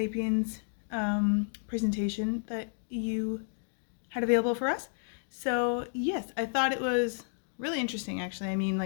presentation that you had available for us. So yes, I thought it was really interesting actually. I mean,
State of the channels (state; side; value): silent; right; digital silence